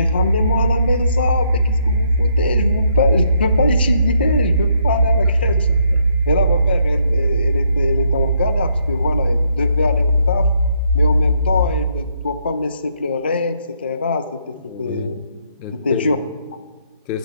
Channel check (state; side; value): inverted; both; correlation -0.72